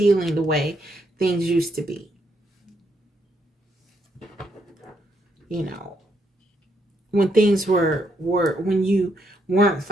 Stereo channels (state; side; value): normal; both; correlation 0.76